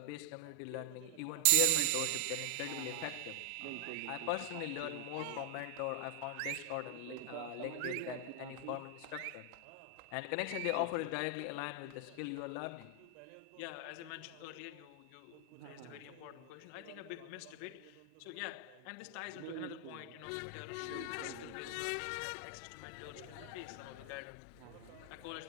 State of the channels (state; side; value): different; both; correlation 0.00